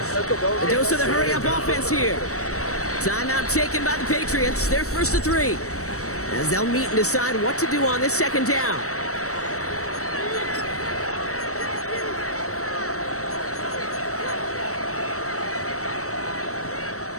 A dose of the hurry-up offense here. Timeout taken by the Patriots. They're 1st to 3. As they'll meet and decide what to do on this 2nd down.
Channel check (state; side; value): late; right; 0.65 ms